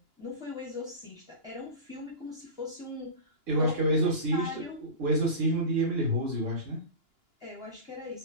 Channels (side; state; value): left; late; 2.9 ms